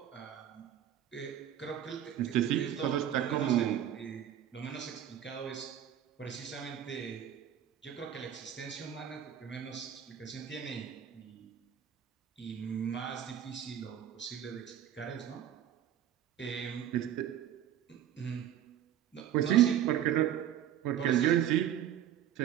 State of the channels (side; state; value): left; quieter; 10.5 dB